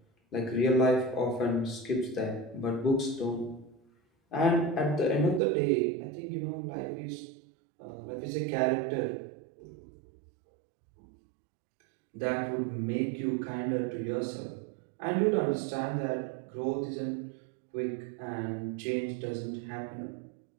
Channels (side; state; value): left; drops out; at 5.4 s